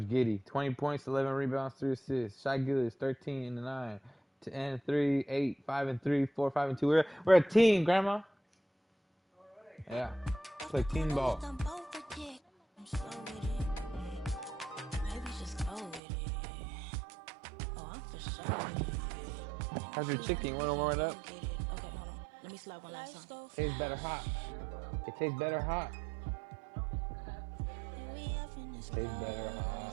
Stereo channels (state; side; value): drops out; left; at 16.0 s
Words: Giddey, 20 points, 11 rebounds, 3 assists. Shai Gilgeous, 13 and 9, 10 and 3, 8, 5 and 3, 4, 5 and 2. We're a team, Grandma. Yeah, it's like team ball. How's your chicken? You want to warm it up? Okay, hold on. Let me slap one last time. Tastes better hot. It tastes better hot. Tastes better